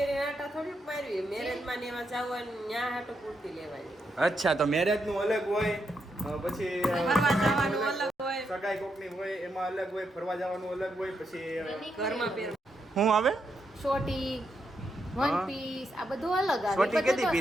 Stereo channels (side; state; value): both; normal; correlation 0.81